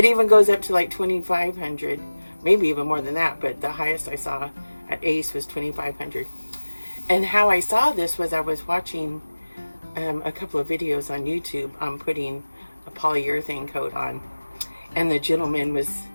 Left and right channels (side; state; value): both; inverted; correlation -1.00